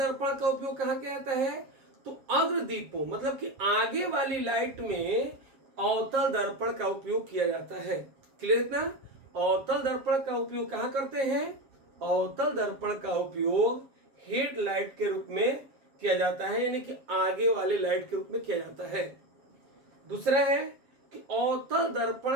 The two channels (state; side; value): late; left; 7.5 ms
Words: का उपयोग कहाँ किया जाता है? तो अग्रदीपों, मतलब कि आगे वाली लाइट में अवतल दर्पण का उपयोग किया जाता है। क्लियर इतना? अवतल दर्पण का उपयोग कहाँ करते हैं? अवतल दर्पण का उपयोग हेडलाइट के रूप में किया जाता है, यानी कि आगे वाले लाइट के रूप में किया जाता है। दूसरा है कि अवतल